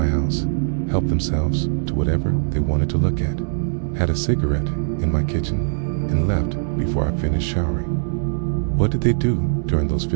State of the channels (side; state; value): left; silent; digital silence